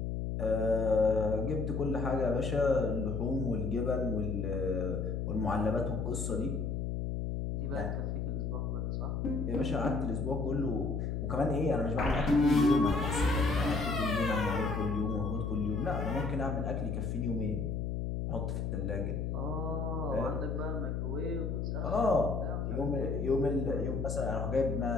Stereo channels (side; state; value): left; noise; hum, 1 dB below the sound